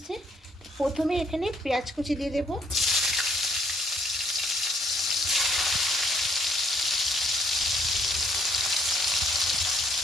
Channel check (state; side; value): normal; both; correlation 0.67